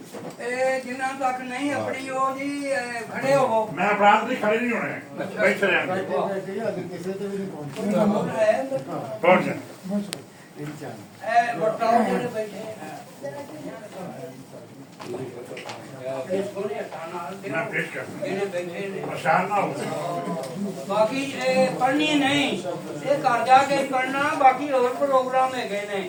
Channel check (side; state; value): both; identical; correlation 1.00